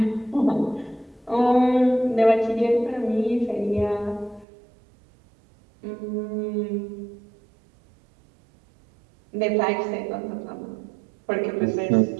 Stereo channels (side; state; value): left; drops out; at 4.5 s